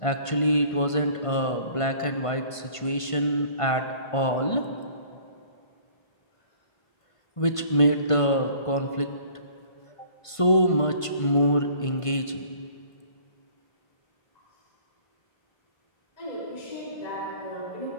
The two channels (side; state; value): right; late; 1.5 ms